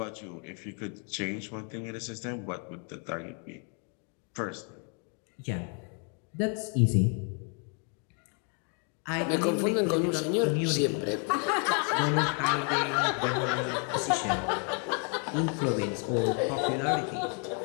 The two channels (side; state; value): right; quieter; 39.5 dB